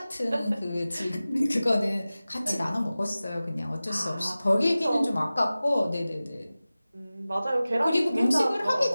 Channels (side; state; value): both; inverted; correlation -0.97